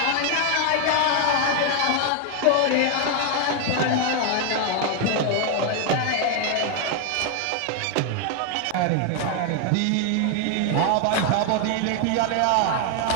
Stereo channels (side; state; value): both; different; correlation 0.01